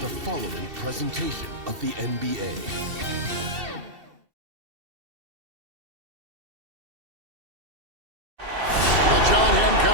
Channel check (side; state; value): left; late; 2.7 ms